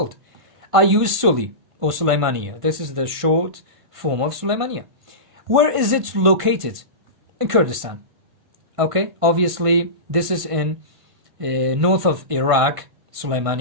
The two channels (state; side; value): late; left; 1.5 ms